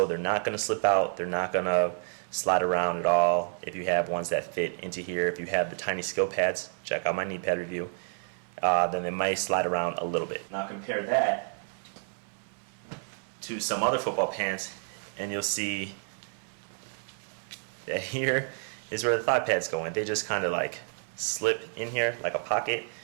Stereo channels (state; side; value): silent; left; 58 dB below the other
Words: they're not going to slip out, they're not going to slide around at all. If you have ones that fit into here, if you have the tiny skill pads, check out my knee pad review, then they might slide around a little bit. Now compare that to some other football pants, and you'll see that here is where the thigh pads go in. They just kind of like slip in here like a pocket,